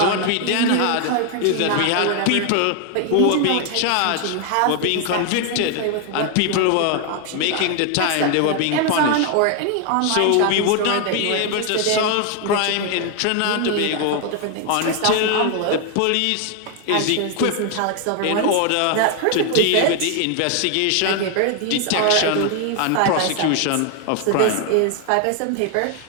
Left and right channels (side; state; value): both; different; correlation 0.00